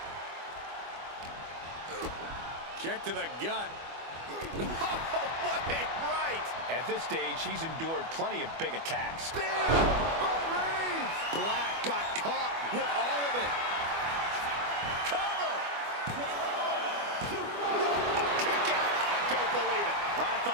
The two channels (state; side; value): late; left; 25 ms